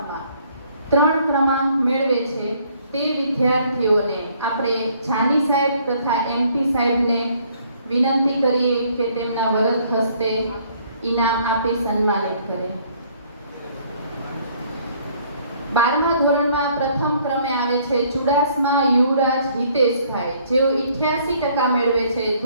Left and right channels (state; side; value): inverted; both; correlation -0.63